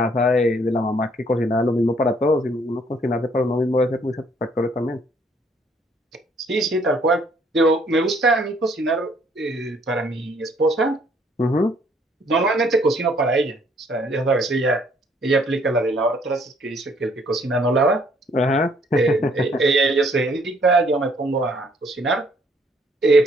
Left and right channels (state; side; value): normal; both; correlation 0.64